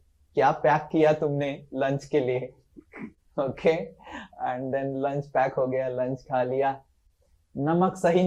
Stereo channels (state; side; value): identical; both; correlation 1.00